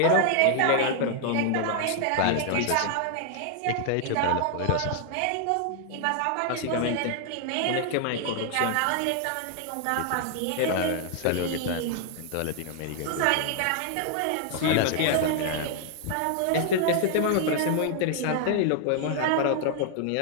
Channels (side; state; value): both; different; correlation 0.00